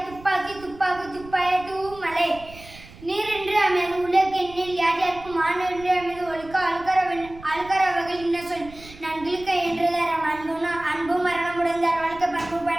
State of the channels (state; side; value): noise; right; rumble, 19 dB below the sound